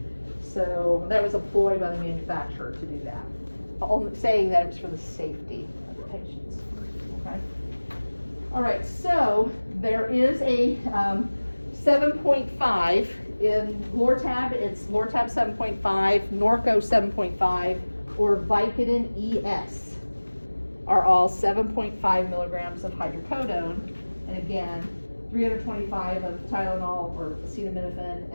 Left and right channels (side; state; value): both; inverted; correlation -1.00